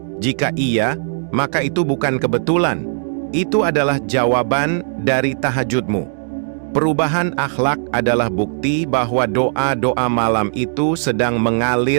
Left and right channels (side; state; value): left; silent; digital silence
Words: Jika iya, maka itu bukan kebetulan. Itu adalah jawaban dari tahajudmu. Perubahan akhlak adalah bukti bahwa doa-doa malam itu sedang